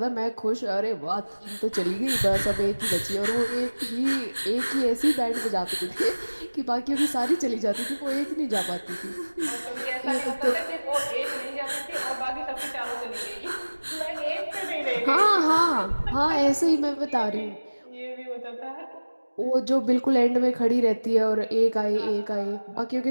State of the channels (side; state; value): both; inverted; correlation -1.00